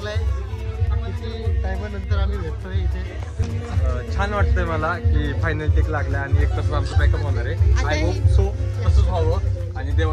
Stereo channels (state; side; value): identical; both; correlation 1.00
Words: किती टायमानंतर आम्ही भेटतोय इथे. छान वाटतंय मला की फायनल टेक लागला आणि एक तास आमचं बॅकअप होणार आहे. आय होप सो तसंच व्हावं आणि